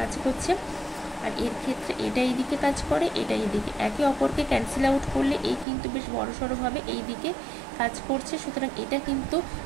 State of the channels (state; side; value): drops out; left; at 5.7 s